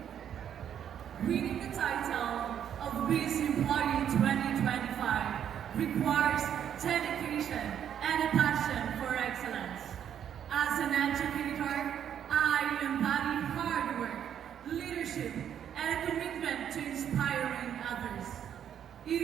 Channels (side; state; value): left; quieter; 9.3 dB